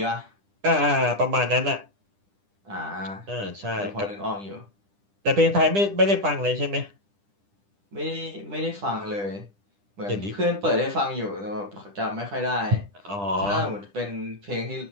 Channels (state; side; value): late; left; 10 ms